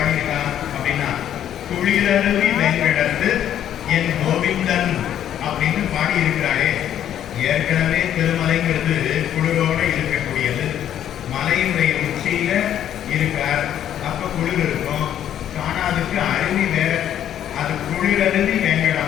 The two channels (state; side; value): quieter; right; 10.6 dB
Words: அப்படின்னா, குளிரருவி வெங்கடத்து என் கோவிந்தன் அப்படின்னு பாடி இருக்கிறாரே. ஏற்கனவே திருமலைங்கிறது குளிரோட இருக்கக்கூடியது. மலையினுடைய உச்சியில இருக்கார், அப்ப குளிர் இருக்கும். காணாதுக்கு அருவி வேற, அது குளிரருவி